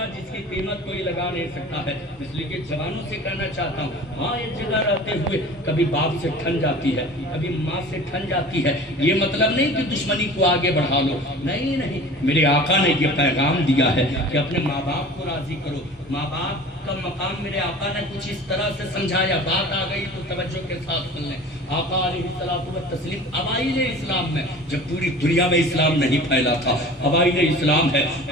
جس کی قیمت کوئی لگا نہیں سکتا ہے. اس لیے کہ جوانوں سے کہنا چاہتا ہوں، ماں ایک جگہ رہتے ہوئے کبھی باپ سے ٹھن جاتی ہے، کبھی ماں سے ٹھن جاتی ہے. یہ مطلب نہیں کہ دشمنی کو آگے بڑھا لو، نہیں نہیں، میرے آقا نے یہ پیغام دیا ہے کہ اپنے ماں باپ کو راضی کرو. ماں باپ کا مقام میرے آقا نے کچھ اس طرح سے سمجھایا، بات آ گئی تو توجہ کے ساتھ سن لیں. آقا علیہ الصلوۃ والتسلیم اوائل اسلام میں، جب پوری دنیا میں اسلام نہیں پھیلا تھا، اوائل اسلام ہے،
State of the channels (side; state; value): both; normal; correlation 0.41